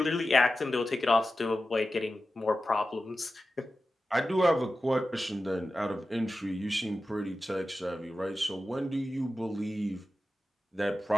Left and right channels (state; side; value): normal; both; correlation 0.93